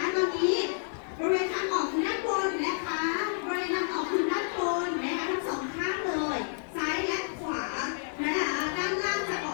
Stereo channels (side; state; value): right; silent; digital silence